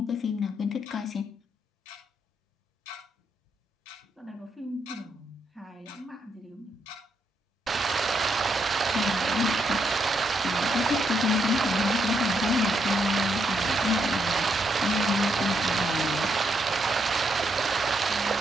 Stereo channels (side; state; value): both; normal; correlation 0.78